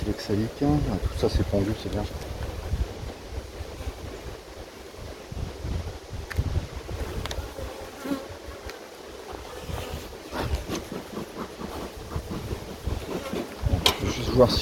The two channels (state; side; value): identical; both; correlation 1.00